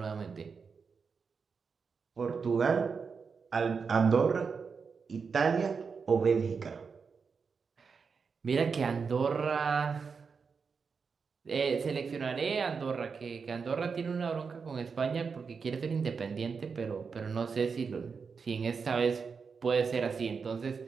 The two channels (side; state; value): left; quieter; 5.5 dB